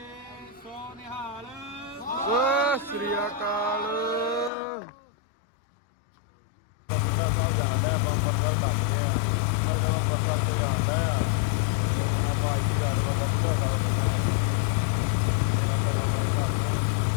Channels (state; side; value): drops out; right; at 4.5 s